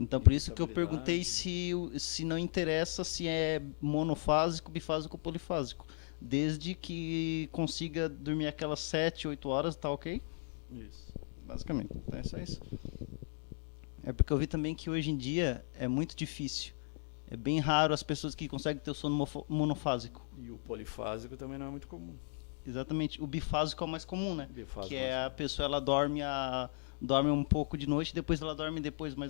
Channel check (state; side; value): silent; right; digital silence